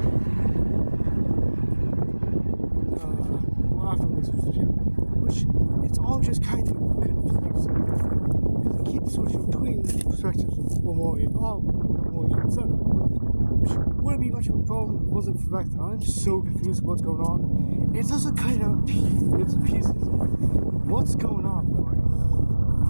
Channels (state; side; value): inverted; both; correlation -1.00